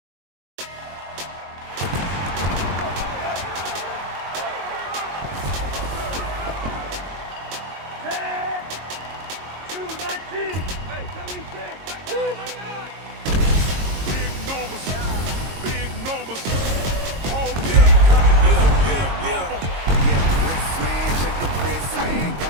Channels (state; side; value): late; left; 22 ms